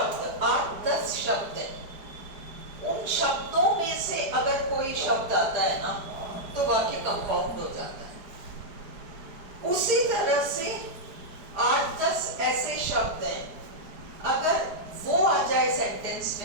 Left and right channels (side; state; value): left; late; 4.8 ms